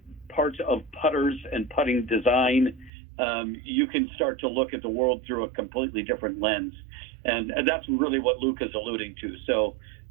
parts of putters and putting design, you can start to look at the world through a completely different lens. And that's really what Luke is alluding to. So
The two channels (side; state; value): left; drops out; at 2.9 s